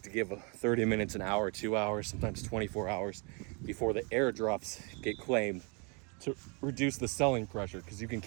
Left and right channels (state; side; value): quieter; left; 32.9 dB